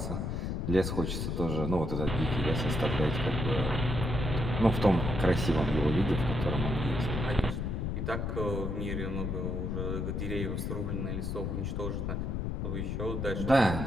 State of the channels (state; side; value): noise; left; rumble, 1 dB below the sound